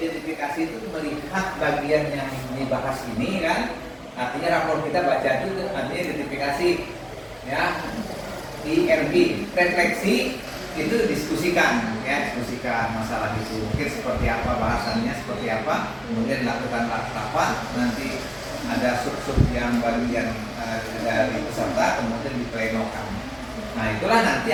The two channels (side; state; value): both; identical; correlation 1.00